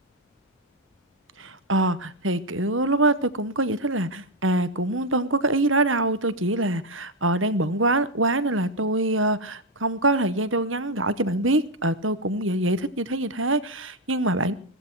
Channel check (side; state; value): both; normal; correlation 0.04